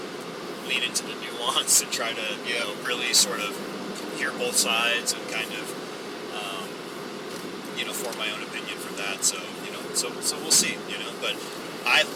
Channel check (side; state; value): both; identical; correlation 1.00